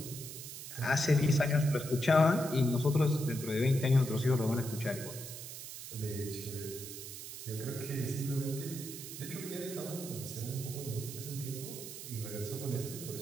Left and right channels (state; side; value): noise; right; hiss, 10 dB below the sound